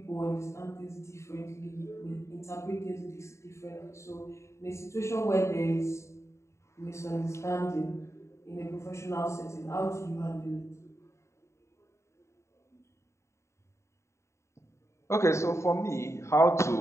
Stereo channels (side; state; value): right; late; 0.14 ms